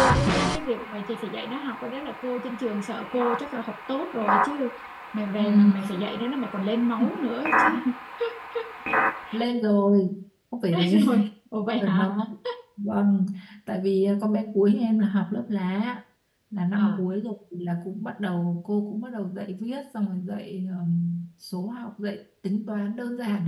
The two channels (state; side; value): identical; both; correlation 1.00